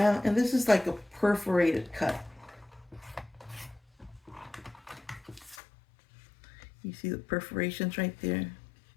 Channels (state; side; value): drops out; right; at 5.6 s